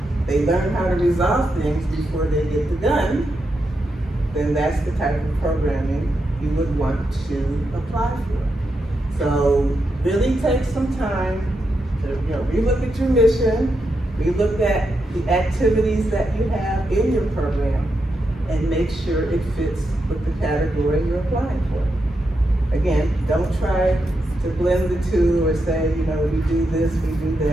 they learn how to resolve things before they get the gun, then that's the type of programming you would want to apply for. So really take some time to, relook at your mission, relook at the activities that you have in your program, and make sure it fits with the category you're applying for. Again, don't try to blend the two or say, we do this, we do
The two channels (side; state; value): both; normal; correlation 0.85